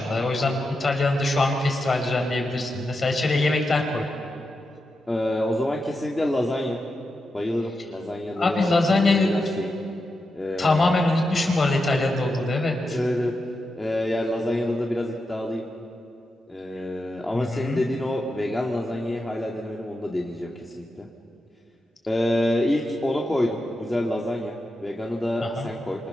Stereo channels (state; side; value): normal; both; correlation 0.88